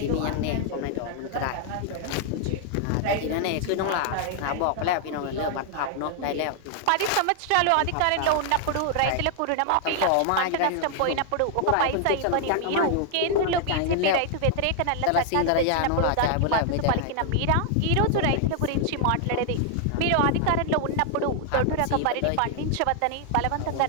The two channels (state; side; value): different; both; correlation 0.00